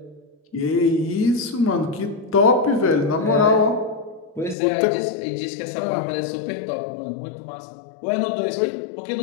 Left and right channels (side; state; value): right; drops out; at 4.5 s